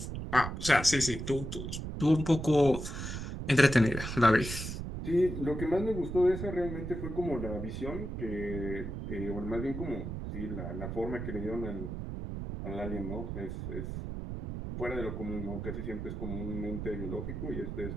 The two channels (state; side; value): noise; right; rumble, 5 dB below the sound